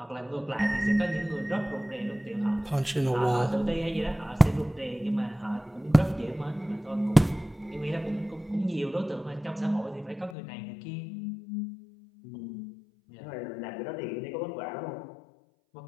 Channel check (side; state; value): right; drops out; at 10.4 s